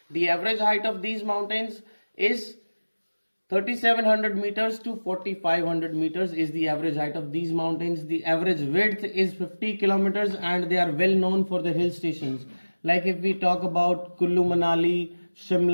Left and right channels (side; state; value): both; inverted; correlation -1.00